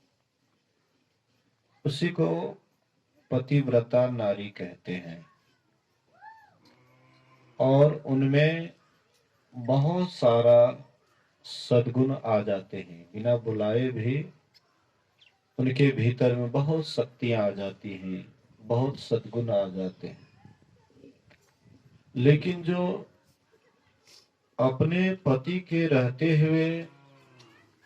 उसी को पतिव्रता नारी कहते हैं। और उनमें बहुत सारा सद्गुण आ जाते हैं, बिना बुलाए भी उनके भीतर में बहुत शक्तियां आ जाती हैं, बहुत सद्गुण आ जाते हैं। लेकिन जो अपने पति के रहते हुए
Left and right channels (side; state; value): both; identical; correlation 1.00